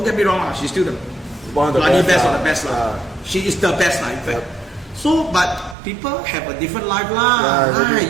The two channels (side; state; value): left; drops out; at 5.8 s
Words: get me wrong, she's still the bloody best of the best. She is the best, in fact. So, but people have a different life